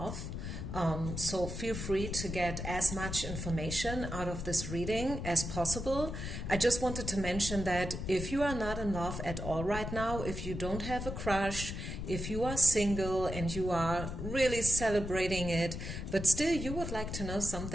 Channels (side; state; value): left; noise; rumble, 6 dB below the sound